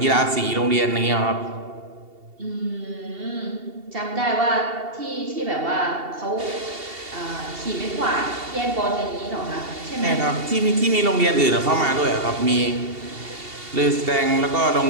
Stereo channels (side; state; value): left; late; 2.7 ms